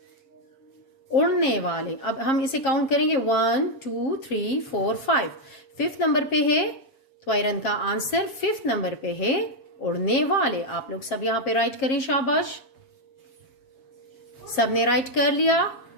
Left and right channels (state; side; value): late; right; 7.5 ms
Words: उड़ने वाले। अब हम इसे काउंट करेंगे 1 2 3 4 5। फिफ्थ नंबर पे है त्वैरन का आंसर, फिफ्थ नंबर पे है उड़ने वाले। आप लोग सब यहां पे राइट करें, शाबाश। सबने राइट कर लिया।